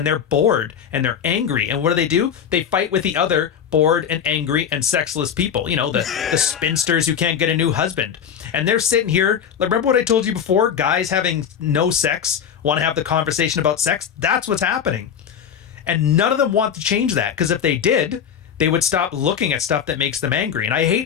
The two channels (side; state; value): right; quieter; 8.1 dB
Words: they're bored, and they're angry. And what do? They fight with the other bored and angry and sexless people. You know, the spinsters who can't get a new husband. And they're sitting here. Remember what I told you before? Guys having no sex want to have the conversation about sex. That's what's happening. And none of them want to change that, because if they did, they would stop looking at stuff that makes them angry. And I